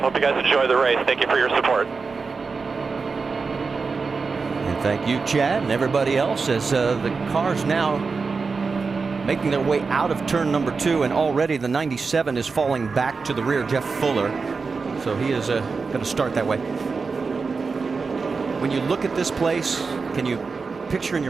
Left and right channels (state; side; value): quieter; left; 4.6 dB